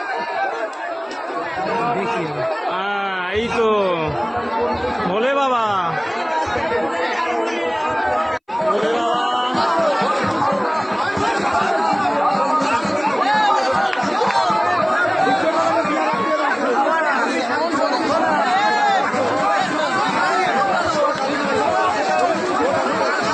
এই তো বলে বাবা, বলে বাবা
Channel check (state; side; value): identical; both; correlation 1.00